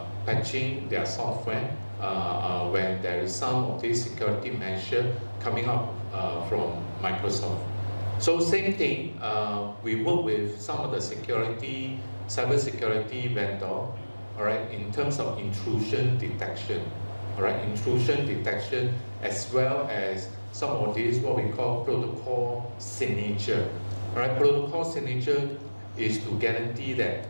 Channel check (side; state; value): both; inverted; correlation -1.00